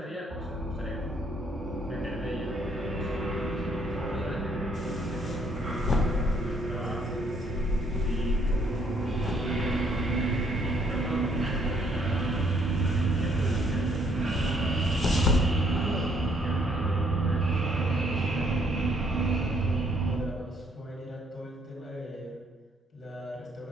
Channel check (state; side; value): normal; both; correlation 0.67